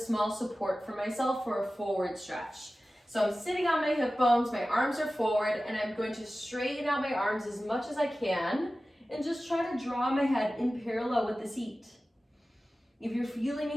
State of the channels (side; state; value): both; normal; correlation 0.96